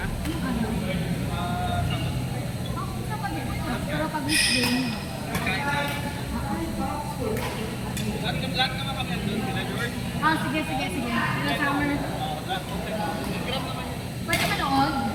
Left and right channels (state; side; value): identical; both; correlation 1.00